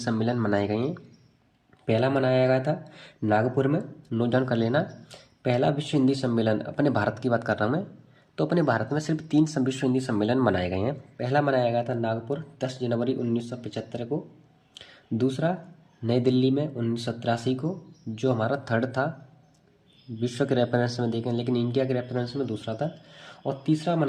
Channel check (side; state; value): both; identical; correlation 1.00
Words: मनाए गए हैं। पहला मनाया गया था नागपुर में, नोट डाउन कर लेना। पहला विश्व हिंदी सम्मेलन, अपने भारत की बात कर रहा हूँ मैं, तो अपने भारत में सिर्फ 3 विश्व हिंदी सम्मेलन मनाए गए हैं। पहला मनाया गया था नागपुर 10 जनवरी 1975 को। दूसरा नई दिल्ली में 1983 को, जो हमारा थर्ड था विश्व के रेफरेंस में देखें, लेकिन इंडिया के रेफरेंस में दूसरा था। और तीसरा